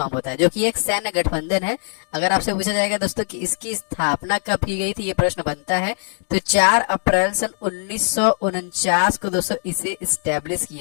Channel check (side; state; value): right; silent; digital silence